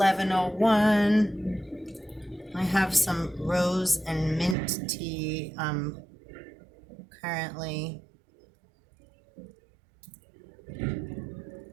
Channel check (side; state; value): left; drops out; at 4.5 s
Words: I have some rose and mint tea currently